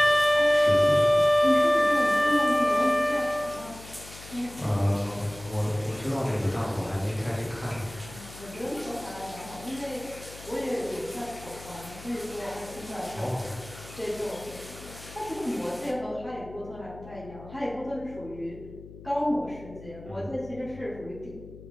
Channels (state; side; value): noise; left; hum, 17 dB below the sound